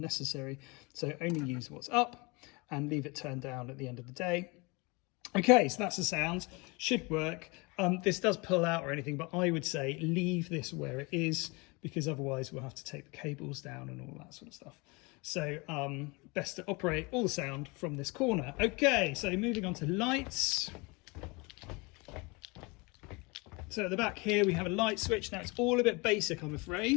So only use what's up and leave it turned down at the end of the day. Okay, so that's the sound. Should work. This does pull out or anything, but I would say leave this where it is because otherwise we'll have to take the cables down and all that sort of stuff. So best to operate all the sound from this corner. Okay, so moving on to lights. So at the back here we have a light switch. Now it's all a bit basic, I'm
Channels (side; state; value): right; quieter; 27.3 dB